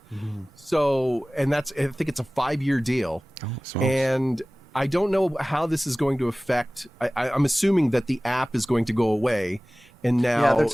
So, and I think it's a 5-year deal. And I don't know how this is going to affect. I'm assuming that the app is going to go away. And now, they're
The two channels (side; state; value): both; normal; correlation 0.98